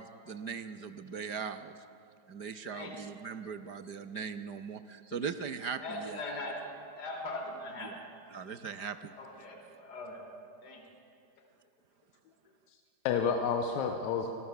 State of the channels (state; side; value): late; right; 5.0 ms